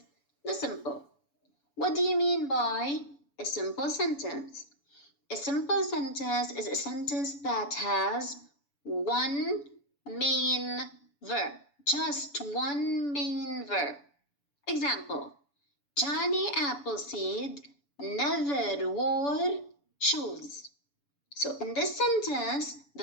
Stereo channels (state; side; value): late; right; 7.0 ms